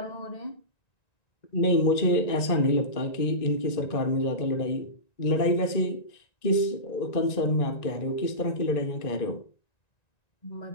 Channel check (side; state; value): right; late; 1.9 ms